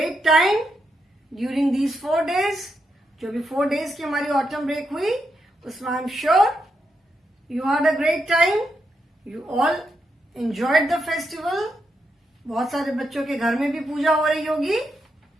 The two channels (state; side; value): normal; both; correlation 0.82